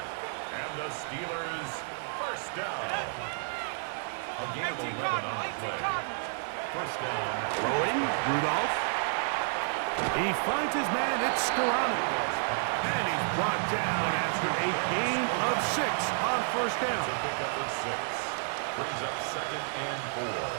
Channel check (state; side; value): silent; left; 57 dB below the other